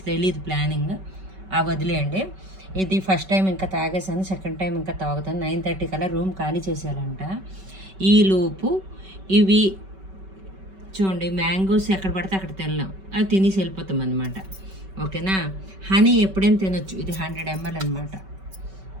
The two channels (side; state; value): left; late; 5.2 ms